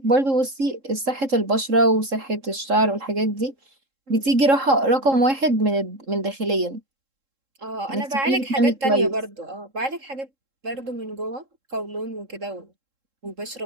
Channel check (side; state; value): left; late; 3.7 ms